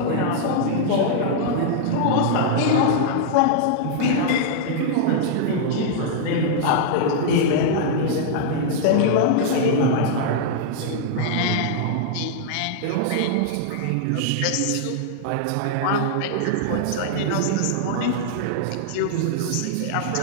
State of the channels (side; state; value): both; different; correlation -0.01